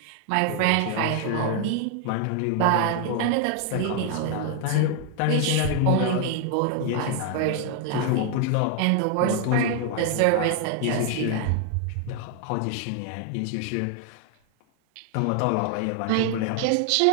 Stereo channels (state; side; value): different; both; correlation 0.00